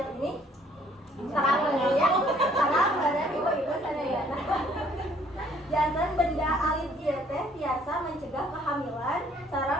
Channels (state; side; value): normal; both; correlation 0.61